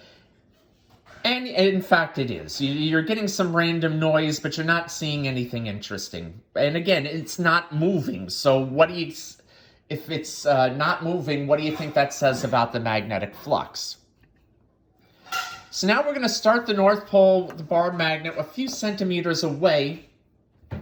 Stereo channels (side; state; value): both; identical; correlation 1.00